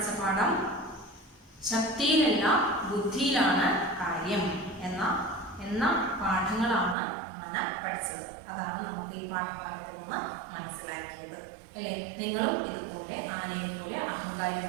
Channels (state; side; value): drops out; left; at 7.0 s